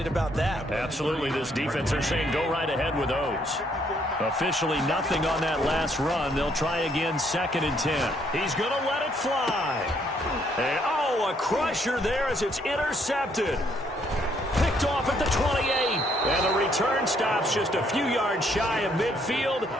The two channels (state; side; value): normal; both; correlation 0.69